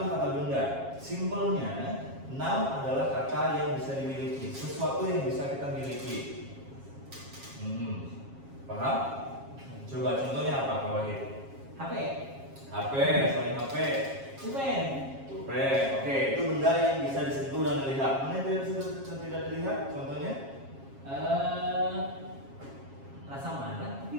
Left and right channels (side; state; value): left; late; 7.4 ms